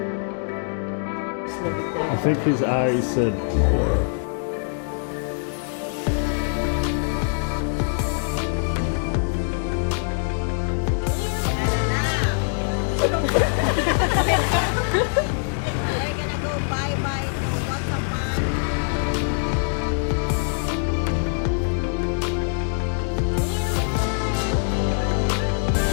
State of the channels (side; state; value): right; silent; 63 dB below the other